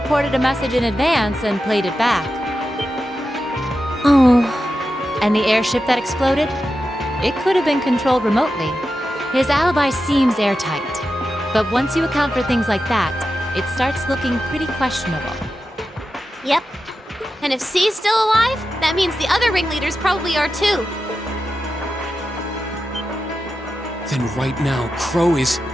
a message in advance and played it back. Oh. And the airship that exploded? It could have been controlled remotely. His alibi seems airtight. But once you account for things like that, it starts looking pretty questionable. Yep. And if C's still alive, that means the other ringleaders probably are too. Then right now, Crow is...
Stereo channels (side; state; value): both; normal; correlation 0.90